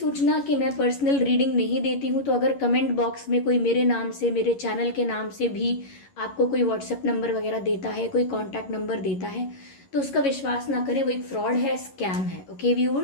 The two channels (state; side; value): late; right; 11 ms